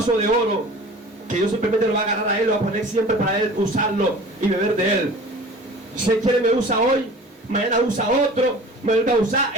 de oro que Dios simplemente lo va a agarrar a Él, lo va a poner siempre para Él usarlo y beber de Él. Si Él quiere me usa hoy, mañana usa otro, me vuelve a usar,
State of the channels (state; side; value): normal; both; correlation 0.42